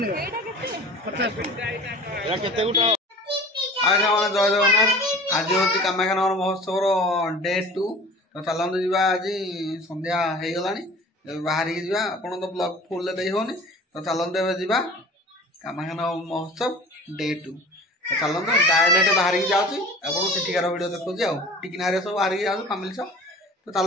50 ଏଟା କେତେ ଗୋଟା ଆଜ୍ଞା ମାନେ ଜୟ ଜଗନ୍ନାଥ। ଆଜି ହଉଛି କାମାକ୍ଷାନଗର ମହୋତ୍ସବର ଡେ 2। ତ ଚାଲନ୍ତୁ ଯିବା। ଆଜି ସନ୍ଧ୍ୟା ହେଇଗଲାଣି, ବାହାରିକି ଯିବା। ଆପଣ ତ ବ୍ଲଗ ଫୁଲରେ ଦେଇ ହଉନି, ତ ଚାଲନ୍ତୁ ଏବେ ଯିବା କାମାକ୍ଷାନଗର ମହୋତ୍ସବ ଡେ 2। ତ ଚାଲନ୍ତୁ ଡାଇରେକ୍ଟ ବାହାରିକି ଯାଉଛି, ଆପଣ ସେଠିକାର ଭିଡ଼ିଓ ଦେଖୁଛି ଆଉ ଟିକିନାରେ ସବୁ ବାହାରିକି ଯାଉଛୁ ଫ୍ୟାମିଲି ସହ। ତ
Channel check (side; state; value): both; normal; correlation 0.42